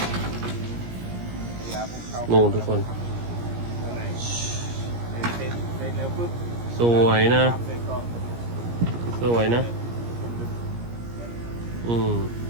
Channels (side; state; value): left; late; 17 ms